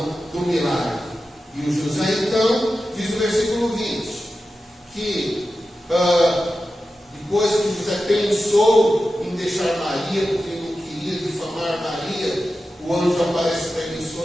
do milagre. E o José então diz no versículo 20 que depois que José pensou em deixar Maria, porque ele não queria difamar Maria, o anjo aparece para ele em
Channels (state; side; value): normal; both; correlation 0.92